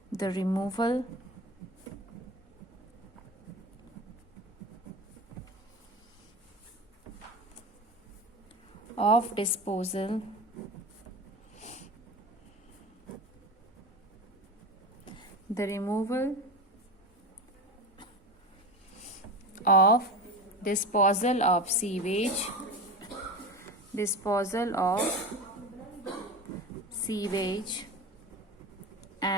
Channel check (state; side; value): normal; both; correlation 0.27